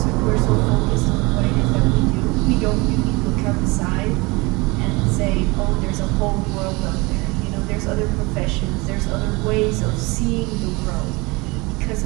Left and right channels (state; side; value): quieter; left; 25.0 dB